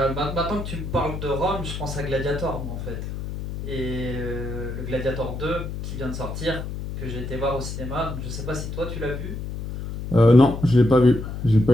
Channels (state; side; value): noise; left; hum, 7 dB below the sound